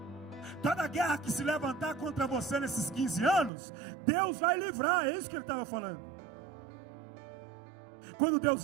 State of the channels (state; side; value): drops out; left; at 3.5 s